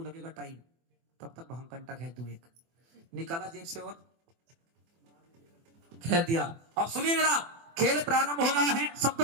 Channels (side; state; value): left; late; 24 ms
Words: लगेगा टाइम, तब तक भांग कंटा खेल दूं, एक निकाला जेब से और खेल दिया। अब सुनिए जरा, खेल प्रारंभ हो रहा है,